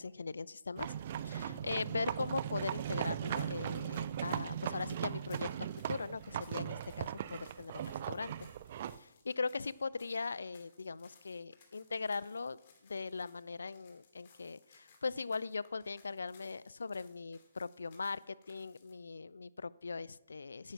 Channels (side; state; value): both; inverted; correlation -0.76